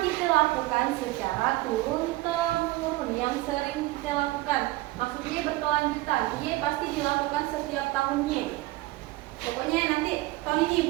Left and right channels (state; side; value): quieter; left; 18.7 dB